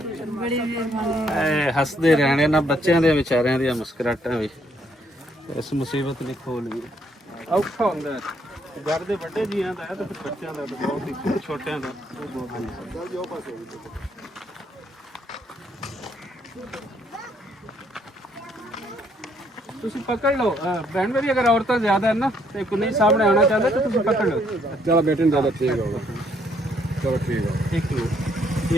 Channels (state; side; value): normal; both; correlation 0.69